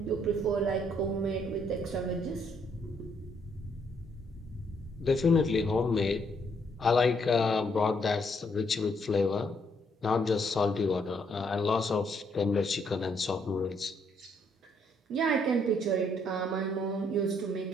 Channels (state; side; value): normal; both; correlation 0.71